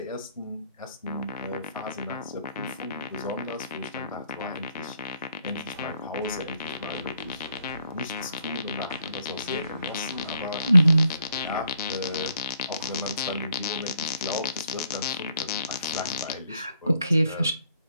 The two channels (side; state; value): both; inverted; correlation -0.70